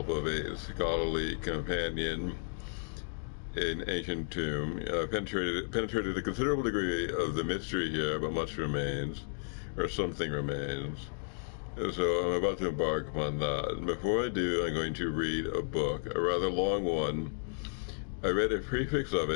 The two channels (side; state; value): right; silent; digital silence